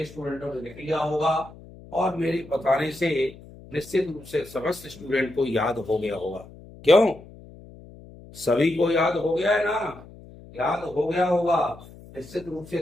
स्टूडेंटों ने लिख लिया होगा और मेरे बताने से निश्चित रूप से समस्त स्टूडेंट को याद हो गया होगा। क्यों? सभी को याद हो गया है ना? याद हो गया होगा। निश्चित रूप से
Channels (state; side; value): noise; left; hum, 19 dB below the sound